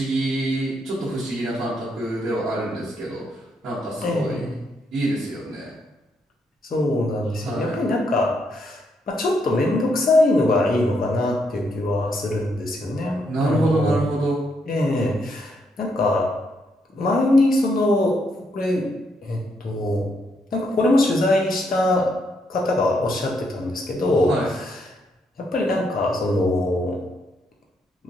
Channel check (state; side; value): normal; both; correlation 0.76